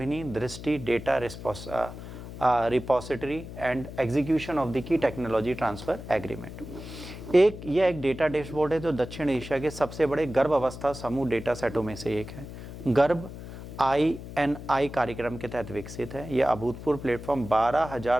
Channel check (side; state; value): left; noise; hum, 12 dB below the sound